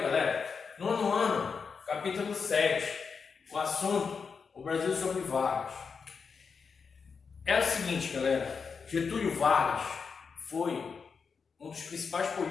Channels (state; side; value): quieter; right; 5.6 dB